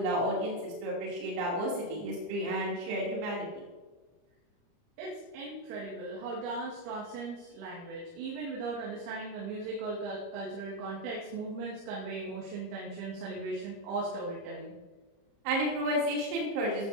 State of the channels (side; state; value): left; late; 30 ms